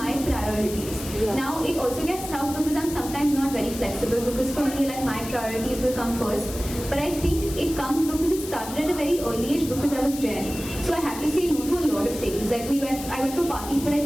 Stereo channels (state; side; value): noise; left; hiss, 11 dB below the sound